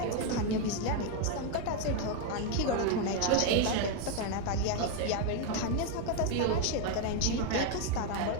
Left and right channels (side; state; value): both; different; correlation 0.01